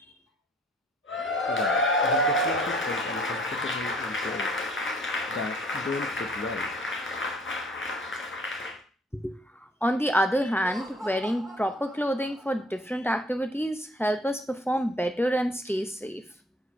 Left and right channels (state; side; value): normal; both; correlation 0.57